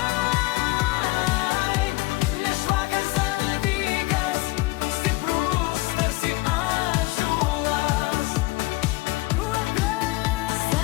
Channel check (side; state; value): right; quieter; 21.4 dB